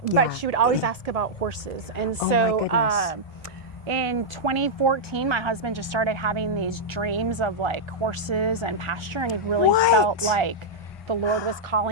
but she would always ask about horses. And so, in 2014, my husband just started having these dreams of like horses and pasture, and he really felt like the Lord was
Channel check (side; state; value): both; normal; correlation -0.06